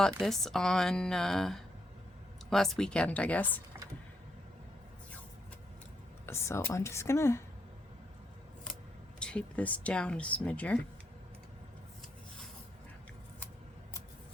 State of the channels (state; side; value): normal; both; correlation 0.77